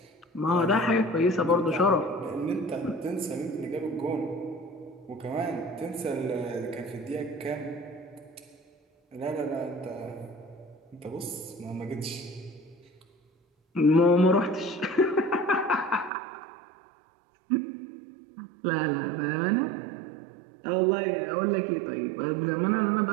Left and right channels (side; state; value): left; drops out; at 16.1 s